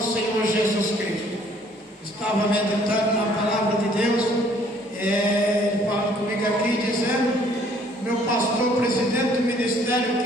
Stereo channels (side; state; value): both; normal; correlation 0.60